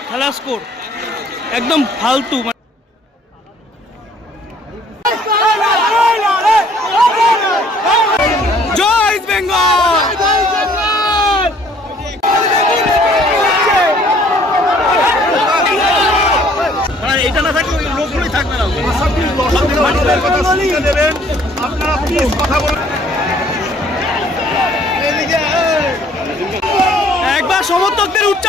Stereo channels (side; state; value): both; normal; correlation 0.59